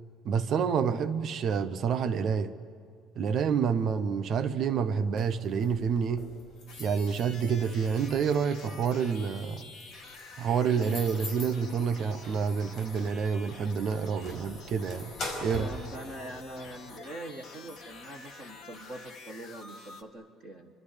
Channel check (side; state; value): left; quieter; 5.8 dB